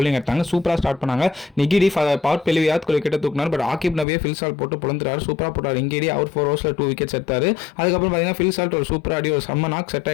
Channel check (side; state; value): right; drops out; at 4.0 s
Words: எடுத்தாங்க. சூப்பராக ஸ்டார்ட் பண்ணாங்க. நிகிடி பவர் பெலி யாத் கிட்ட தூக்கினார். பட் ஆக்கிப் நபியே ஃபில் சால்ட் போட்டு பொழுந்துறாரு. சூப்பராக போட்டார். இங்கேடி அவர் 4 ஓவர்ஸில் 2 விக்கெட்ஸ் எடுத்தார். அதுக்கப்புறம் பார்த்தீங்கன்னா ஃபில் சால்ட் ஒரு சூப்பர் ஆடி ஒரு செம்ம நாக் செட்